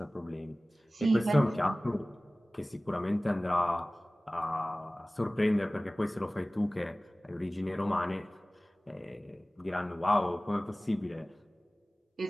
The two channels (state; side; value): normal; both; correlation 0.98